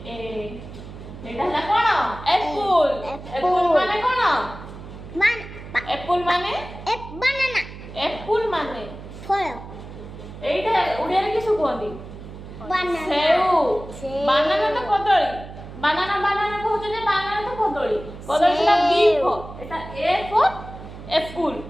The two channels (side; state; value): right; noise; hum, 13 dB below the sound